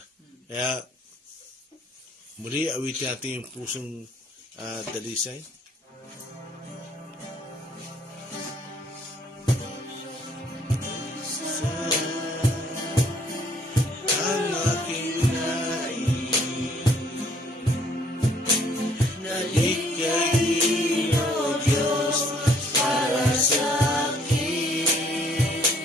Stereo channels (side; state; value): both; normal; correlation 0.63